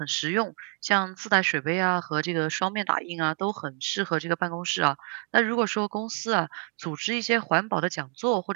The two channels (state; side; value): quieter; left; 35.3 dB